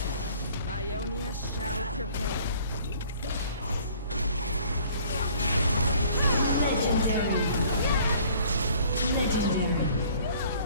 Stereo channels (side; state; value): both; inverted; correlation -0.54